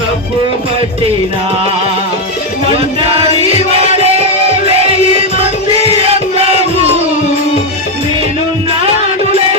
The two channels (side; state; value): both; normal; correlation 0.05